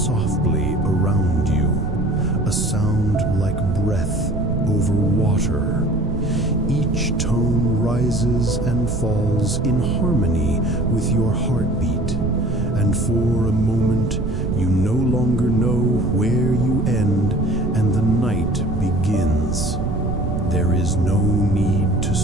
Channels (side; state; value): right; noise; rumble, 3 dB below the sound